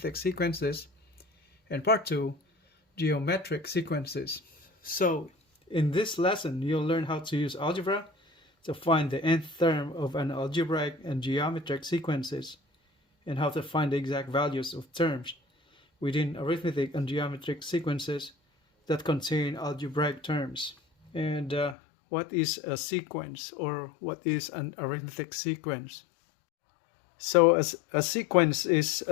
sequences and part 2, geometric sequences. So in this lesson, you'll learn how to use algebra to find the nth term of an algebraic and geometric sequences and how to find the exact values of terms within arithmetic and geometric sequences that contain algebraic terms. And what is a sequence, or what is an arithmetic sequence? So a sequence is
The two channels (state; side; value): drops out; right; at 21.8 s